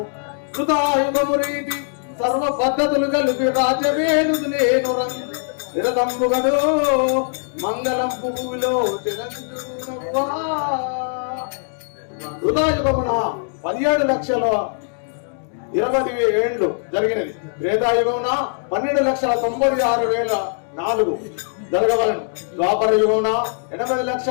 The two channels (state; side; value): silent; right; 65 dB below the other